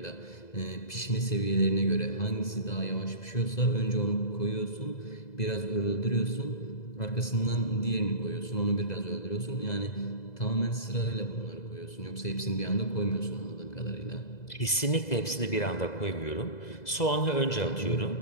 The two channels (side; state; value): right; late; 2.0 ms